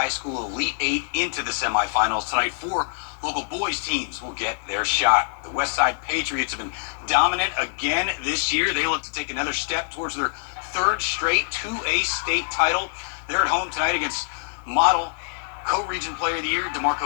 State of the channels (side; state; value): right; silent; 62 dB below the other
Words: School Elite Eight into the semifinals. Tonight, 4 local boys teams will get their shot. The Westside Patriots have been dominant again this year. They look to take another step towards their 3rd straight 2A state title. They're at home tonight against Model. Co-Region Player of the Year,